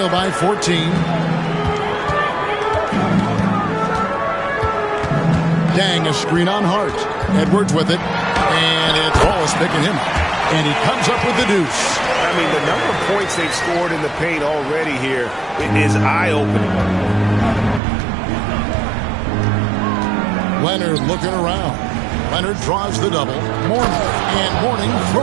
by 14. Dang, a screen on Hart. Edwards with it, and it's Wallace picking him up. And he comes up with the deuce. I mean, the number of points they've scored in the paint already here, it is eye-opening. Leonard looking around. Leonard draws the double. Mourning, and Mourning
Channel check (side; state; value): left; drops out; at 17.8 s